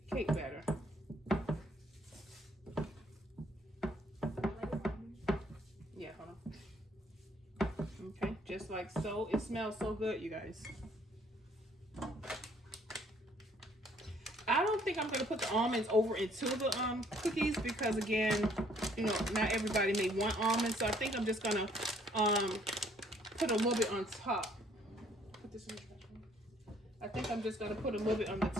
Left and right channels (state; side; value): normal; both; correlation 0.63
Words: cake batter. Yeah, hold on. Okay, just like so. It smells so good, you guys. I don't think I'm going to put the almonds over into the cookies because, again, you know, not everybody may want almonds. So I think I'm just going to put a little bit on top. Put this in the trash can. I think I'm just gonna put a little bit on the